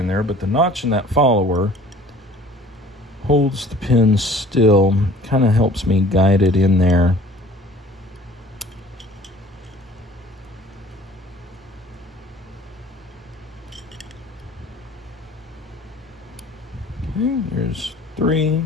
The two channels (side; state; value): both; normal; correlation 0.49